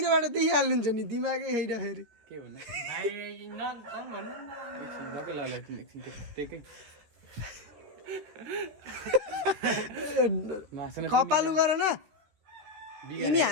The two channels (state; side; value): late; left; 13 ms